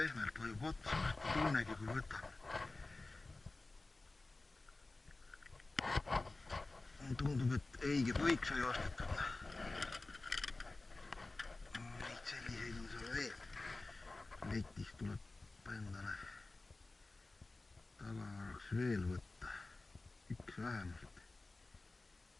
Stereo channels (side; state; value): right; quieter; 3.2 dB